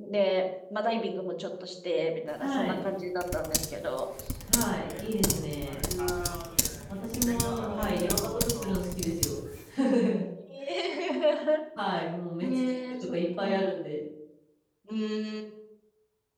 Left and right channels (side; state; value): both; identical; correlation 1.00